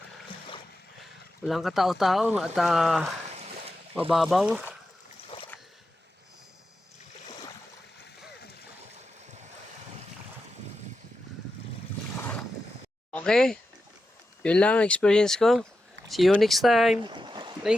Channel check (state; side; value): normal; both; correlation 0.90